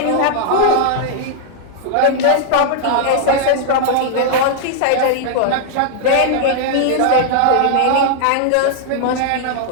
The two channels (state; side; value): different; both; correlation 0.00